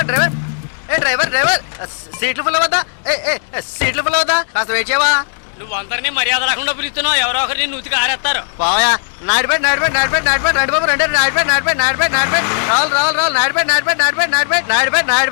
డ్రైవర్ ఏ డ్రైవర్ డ్రైవర్ సీట్లు ఫుల్ అవుతా ఏ ఏ సీట్లు ఫుల్ అవుతా కాస్త వెయిట్ చేయవా నువ్వు అందరినీ మర్యాద రాకుండా పిలుస్తున్నావు ఎవరో ఒకరిని నూతికి ఆరేస్తారు పోయా నాడిపేట నాడిపేట నాడిపేట నాడిపేట నడిబాబు రెండు నాడిపేట నాడిపేట నాడిపేట నాడిపేట రావాలి రావాలి రావాలి నాడిపేట నాడిపేట నాడిపేట నాడిపేట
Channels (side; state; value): right; silent; digital silence